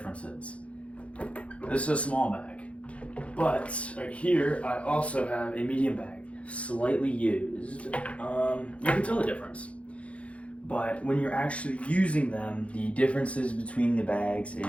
This is a small bag, but right here I also have a medium bag, slightly used. You can tell the difference. But when you're actually using them, the differences between the bags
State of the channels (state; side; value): late; right; 0.063 ms